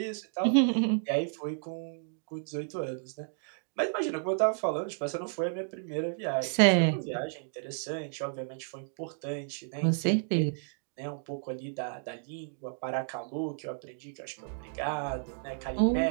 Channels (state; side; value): silent; left; digital silence